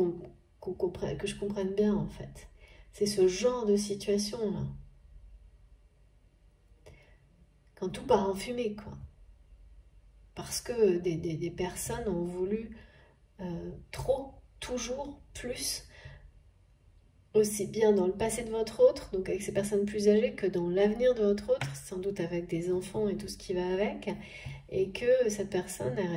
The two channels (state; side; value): identical; both; correlation 1.00